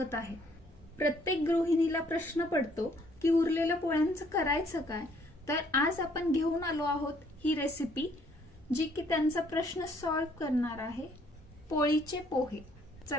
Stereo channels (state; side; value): normal; both; correlation 0.64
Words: आहे। प्रत्येक गृहिणीला प्रश्न पडतो की उरलेल्या पोळ्यांचं करायचं काय। तर आज आपण घेऊन आलो आहोत ही रेसिपी जी की त्यांचा प्रश्न सॉल्व्ह करणार आहे, पोळीचे पोहे।